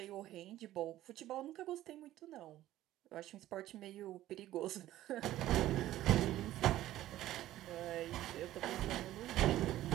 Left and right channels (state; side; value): quieter; left; 14.3 dB